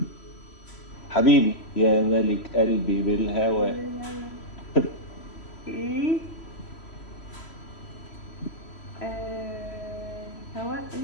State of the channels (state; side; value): late; right; 3.0 ms